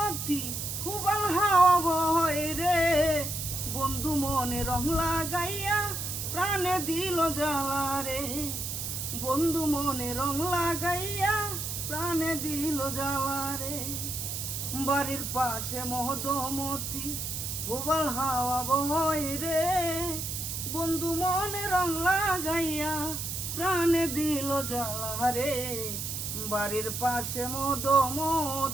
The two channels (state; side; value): noise; right; hiss, 4 dB below the sound